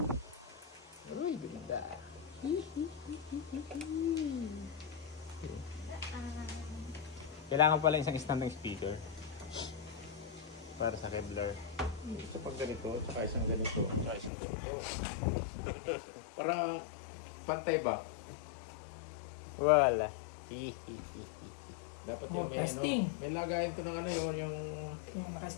Uy, ganda. Kailangan pala isang standing speaker para sa Kevlar. Isa pag ganito, saka isang ganito, saka isang ganito. Para pantay ba? Wala. Dapat yung may ano, may lagayan ko ng ano yun, yung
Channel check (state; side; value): drops out; right; at 14.3 s